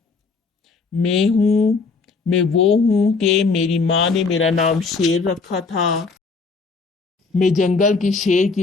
میں وہ ہوں کہ میری ماں نے میرا نام شیر رکھا تھا، میں جنگل کے شیر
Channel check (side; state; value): right; quieter; 4.5 dB